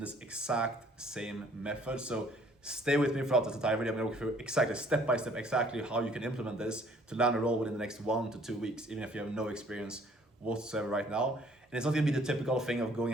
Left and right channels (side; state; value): both; normal; correlation 0.59